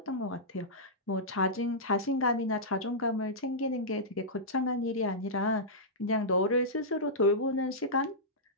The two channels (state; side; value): normal; both; correlation -0.13